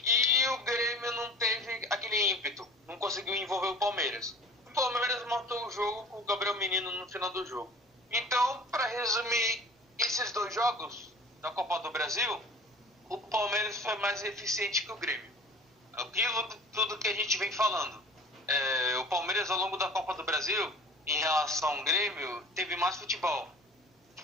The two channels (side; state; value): both; normal; correlation 0.44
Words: o Grêmio não teve aquele ímpeto, não conseguiu envolver o Palmeiras. O Palmeiras matou o jogo com o Gabriel Menino no final do jogo. Então, para resumir esses 2 jogos da Copa do Brasil, o Palmeiras foi mais eficiente que o Grêmio. Aquilo tudo que a gente vem falando. O Palmeiras, ao longo da Copa do Brasil, em relação ao Grêmio, teve mais futebol.